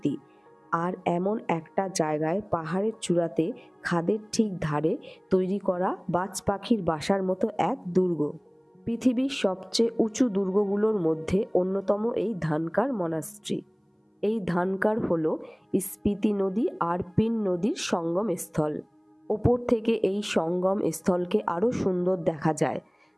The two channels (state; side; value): identical; both; correlation 1.00